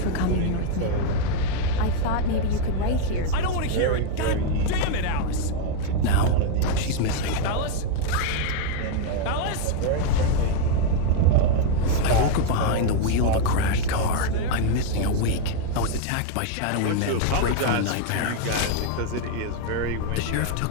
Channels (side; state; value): both; different; correlation 0.00